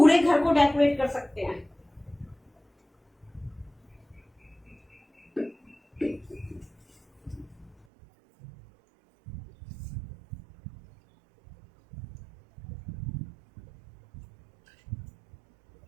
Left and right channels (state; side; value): drops out; left; at 7.8 s